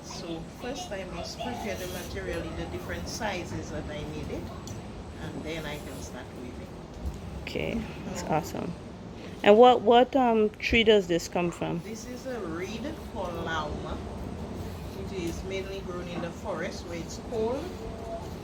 So first I must prepare the material in the different sizes that I need it. And then I can start weaving. Okay, that's awesome. And what tree does this come from? This is a reed called lauma. It is mainly grown in the forest where it's cold.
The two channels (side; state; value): both; identical; correlation 1.00